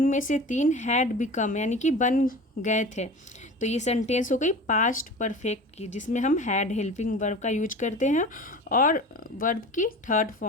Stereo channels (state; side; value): normal; both; correlation 0.35